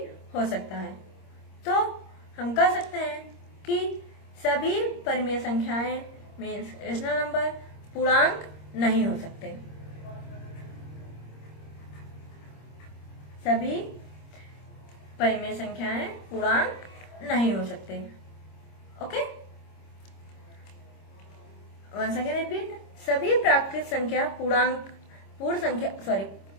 हो सकता है। तो हम कह सकते हैं कि सभी परिमेय संख्याएं मीन्स रेशनल नंबर पूर्णांक नहीं हो सकते। सभी परिमेय संख्याएं पूर्णांक नहीं हो सकते। ओके, वंस अगेन रिपीट, सभी प्राकृतिक संख्या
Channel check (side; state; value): right; late; 26 ms